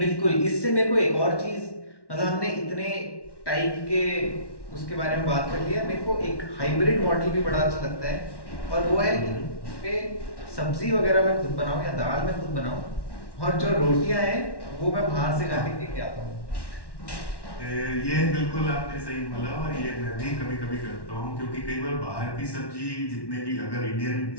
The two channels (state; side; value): late; right; 1.1 ms